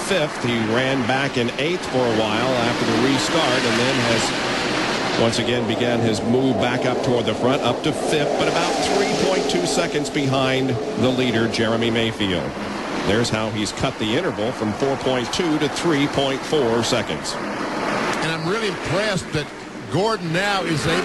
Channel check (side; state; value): both; identical; correlation 1.00